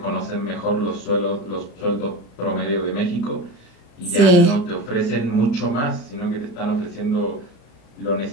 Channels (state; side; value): late; right; 34 ms